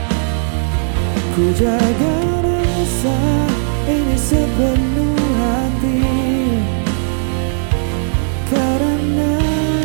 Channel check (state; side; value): silent; left; 69 dB below the other